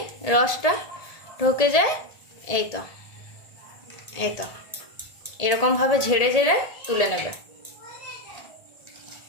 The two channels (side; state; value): right; late; 1.7 ms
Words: রসটা ঢুকে যায়। এই তো এরকম ভাবে ঝেড়ে ঝেড়ে তুলে নেবে।